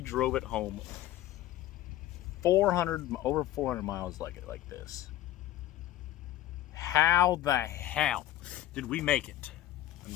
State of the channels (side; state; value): right; quieter; 14.1 dB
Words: it home over 400 miles like this. How the hell did we make it? I'm